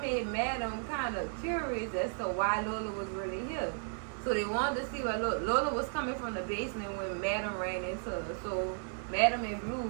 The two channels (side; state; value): left; silent; 55 dB below the other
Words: Madam kind of curious as to why Lola was really here. So they wanted to see why Lola was coming from the basement when Madam ran into her. So Madam and